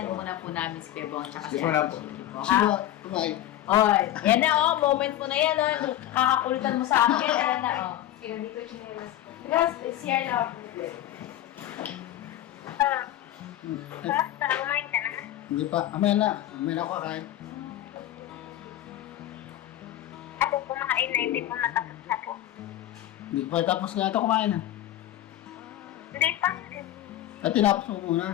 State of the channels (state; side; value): quieter; right; 13.1 dB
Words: muna po namin si Pebong. Excuse mo na po. Ha? Bye. Oy, yan na moment mo na yan. Kakakulitan mo sa akin. Yan na Kaya dito chinelas ko. Guys, CR na. Basta, kumain ka na. Hindi pa. Mamaya na. Mamaya na ako kakain. Ako kumain na, hindi po natapos na po. Hindi pa tapos na ito kumain ha. Hindi pa. At tinapos mo